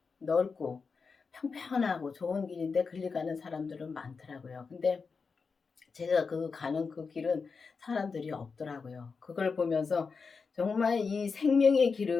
넓고 평평하고 좋은 길인데 그리 가는 사람들은 많더라고요. 근데 제가 가는 그 길은 사람들이 없더라고요. 그걸 보면서 정말 이 생명의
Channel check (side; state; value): right; quieter; 5.0 dB